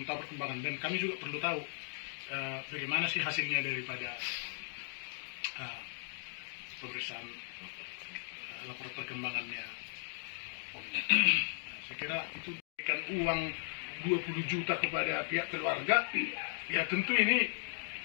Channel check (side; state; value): right; silent; digital silence